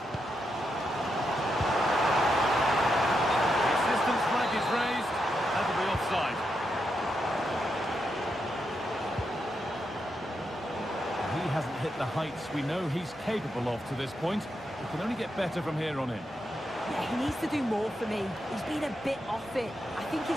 The assistant's flag is raised. That'll be offside. He hasn't hit the heights we know he's capable of to this point. He can only get better from here on in. Yeah, he needs to do more for me. He's been a bit off it. I think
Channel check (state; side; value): normal; both; correlation 0.84